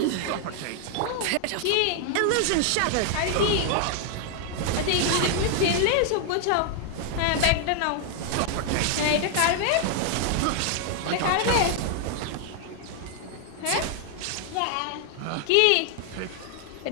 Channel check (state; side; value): different; both; correlation 0.00